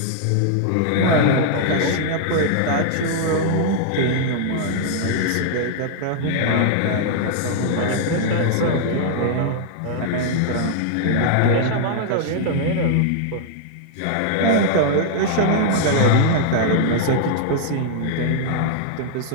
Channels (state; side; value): different; both; correlation -0.01